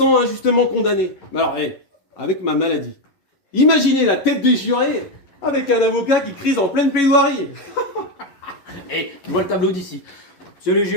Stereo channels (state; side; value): late; right; 10 ms